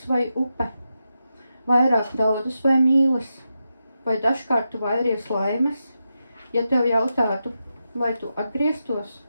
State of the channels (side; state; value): both; inverted; correlation -0.88